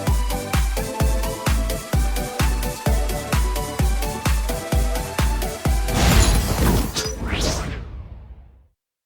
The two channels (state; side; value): identical; both; correlation 1.00